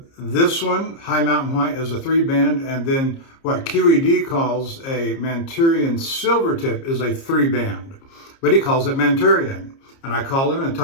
this one, high mountain white, is a 3-band, and then what QED calls a Manchurian silvertip is a 3-band, but he calls it Manchurian. And I called him and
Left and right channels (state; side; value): late; right; 30 ms